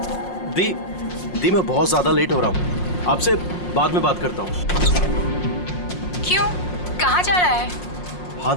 मैं बहुत ज्यादा लेट हो रहा हूँ। आपसे बाद में बात करता हूँ। क्यों? कहाँ जा रहा है? हाँ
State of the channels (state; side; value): late; right; 5.6 ms